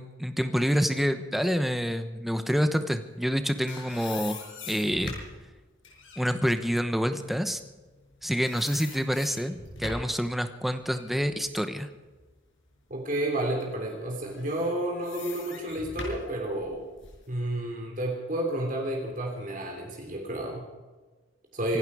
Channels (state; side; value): normal; both; correlation 0.81